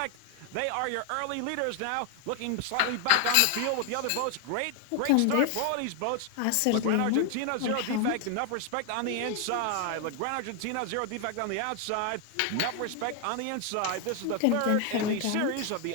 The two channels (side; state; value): both; different; correlation 0.01